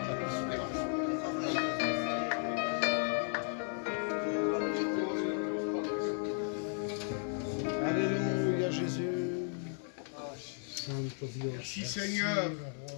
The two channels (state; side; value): silent; right; 54 dB below the other